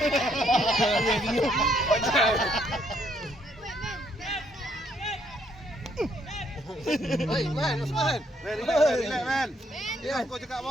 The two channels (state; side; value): normal; both; correlation 0.70